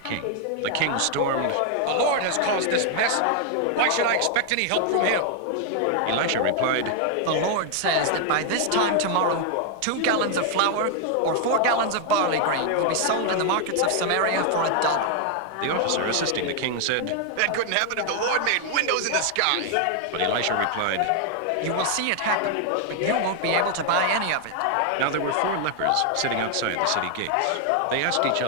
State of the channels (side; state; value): both; different; correlation 0.00